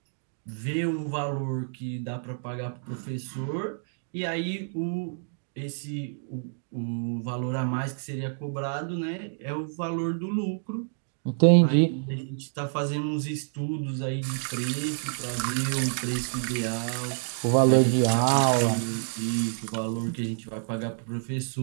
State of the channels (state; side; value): silent; left; digital silence